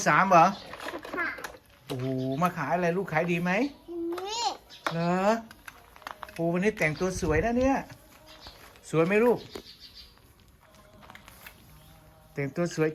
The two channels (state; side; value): identical; both; correlation 1.00